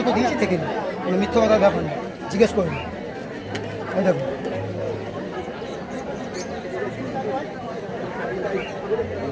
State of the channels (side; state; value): both; identical; correlation 1.00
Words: দিয়েছি, দেখে নিন, কোনো মিথ্যা কথার ব্যাপার না, জিজ্ঞেস করুন। এই দেখুন